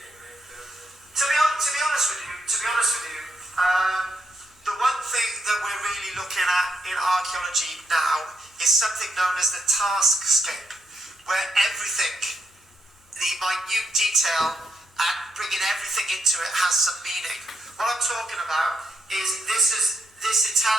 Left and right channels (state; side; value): normal; both; correlation 0.79